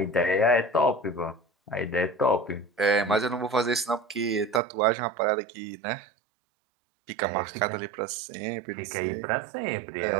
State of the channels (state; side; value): drops out; left; at 4.6 s